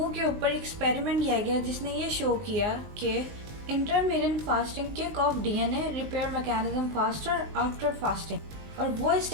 के ऊपर एक्सपेरिमेंट किया गया जिसने ये शो किया कि intermittent fasting kick off DNA repair mechanism faster after fasting, और वो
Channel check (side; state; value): left; late; 19 ms